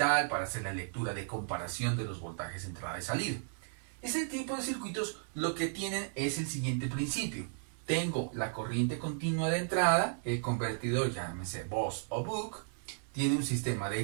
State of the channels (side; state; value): left; silent; 55 dB below the other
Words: para hacer la lectura de comparación de los voltajes entrada y salida. Ese tipo de circuitos lo que tienen es el siguiente principio. Tengo la corriente continua de entrada, el convertidor, llámese Boost o Buck, tiene un sistema de